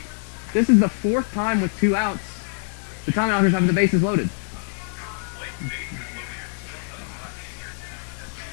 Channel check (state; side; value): silent; right; digital silence